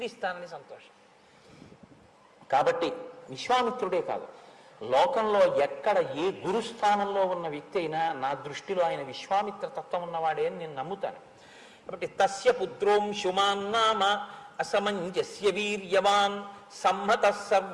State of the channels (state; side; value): identical; both; correlation 1.00